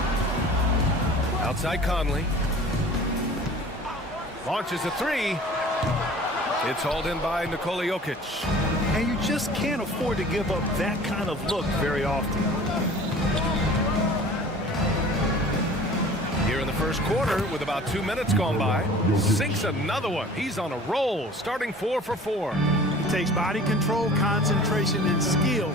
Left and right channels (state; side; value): normal; both; correlation 0.45